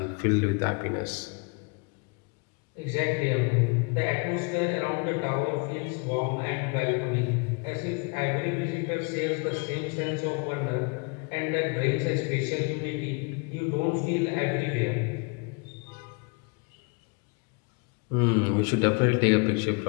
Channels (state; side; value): quieter; right; 32.2 dB